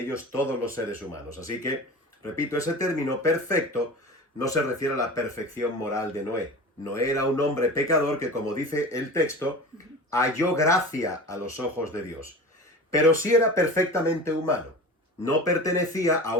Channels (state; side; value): normal; both; correlation 0.34